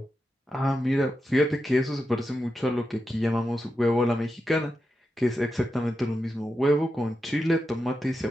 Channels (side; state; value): both; normal; correlation 0.88